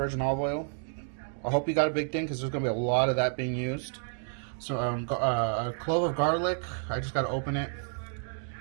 olive oil. I hope you got a big thing because there's going to be a lot of that being used. So a clove of garlic. I just got to open it.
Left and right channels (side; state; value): left; silent; 58 dB below the other